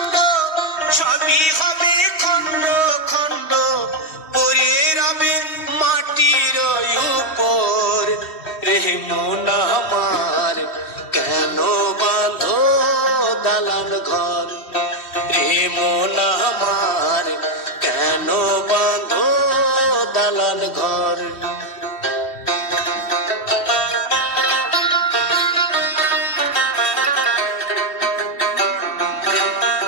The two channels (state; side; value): late; right; 3.1 ms